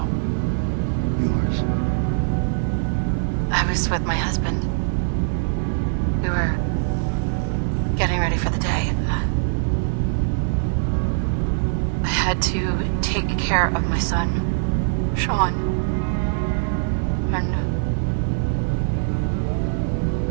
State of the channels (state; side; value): silent; left; 57 dB below the other